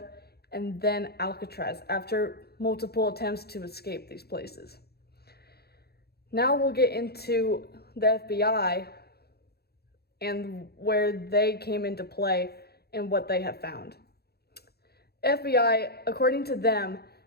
and then Alcatraz after multiple attempts to escape these places. Now we'll get into the FBI and where they came into play and what they have found. FBI, according to them,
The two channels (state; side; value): late; right; 0.46 ms